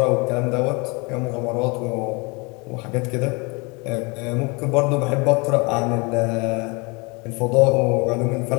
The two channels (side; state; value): right; quieter; 28.8 dB